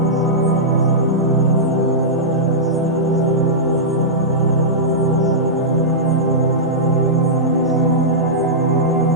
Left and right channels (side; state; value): both; normal; correlation -0.13